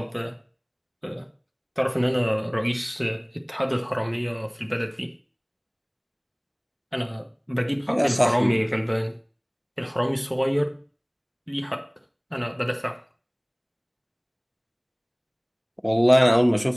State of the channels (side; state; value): both; identical; correlation 1.00